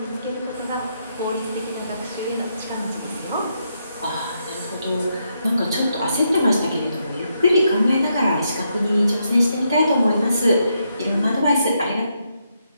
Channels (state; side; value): inverted; both; correlation -0.79